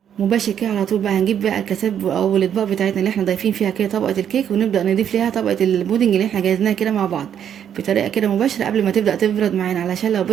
مباشر كده على طول بقى هنجيب بقى الكاسات او الاطباق بتاعتنا اللي احنا ضايفين فيها كده طبقه الكيك ونبدا نضيف ليها طبقه البودنج اللي احنا جهزناها كده مع بعض بطريقه كده مباشره قبل ما تبدا تبرد معانا، علشان لو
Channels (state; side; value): quieter; left; 9.1 dB